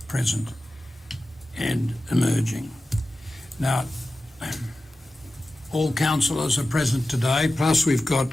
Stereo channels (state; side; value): normal; both; correlation 0.95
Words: present and emerging. Now, all councillors are present today, plus we've got